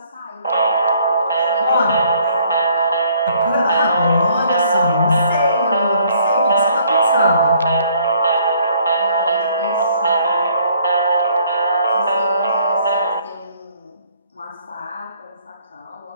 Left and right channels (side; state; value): both; inverted; correlation -0.63